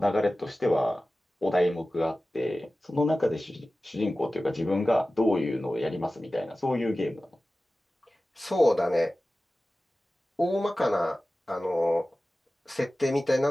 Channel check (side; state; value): both; normal; correlation 0.96